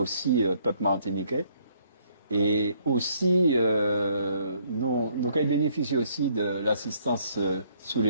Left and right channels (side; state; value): both; inverted; correlation -0.65